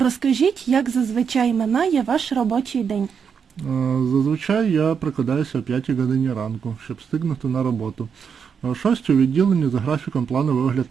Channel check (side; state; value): left; quieter; 6.7 dB